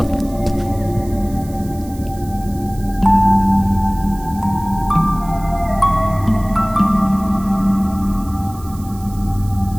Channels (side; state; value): right; noise; hiss, 21 dB below the sound